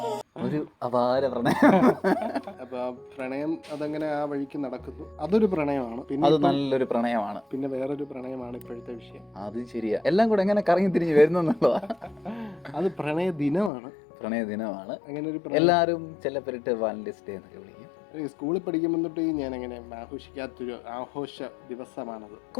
ഒരു അപാര പ്രണയം. അപ്പൊ ആ പ്രണയം അതങ്ങനെ ആ വഴിക്ക് നടക്കുന്നു. അതൊരു പ്രണയമാണ്. പിന്നെ അത് നല്ലൊരു പ്രണയമാണ്. പിന്നെ വേറൊരു പ്രണയമാണ് ഇപ്പോഴത്തെ വിഷയം. അത് ശരിയാ. എല്ലാം കൂടെ എങ്ങനെ കറങ്ങി തിരിഞ്ഞ് വരുന്നുള്ളതാ. അത് പ്രണയ ദിനമാണ്. പ്രണയ ദിനമാണ്. അങ്ങനെ ഒരു എല്ലാവരും ചിലപ്പെട്ട് വാലന്റൈൻസ് ഡേ എന്നൊക്കെ വിളിക്കും. സ്കൂളിൽ പഠിക്കുമ്പോൾ തൊട്ട് ഞാൻ അങ്ങനെ ആഘോഷിക്കാത്തൊരു ആഘോഷ ദിവസമാണത്.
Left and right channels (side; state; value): right; drops out; at 13.7 s